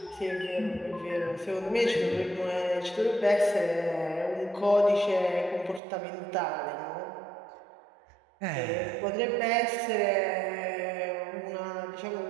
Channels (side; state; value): left; drops out; at 5.8 s